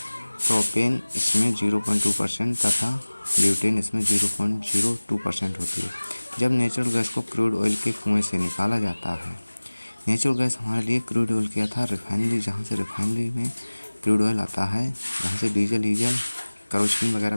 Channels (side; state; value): both; inverted; correlation -1.00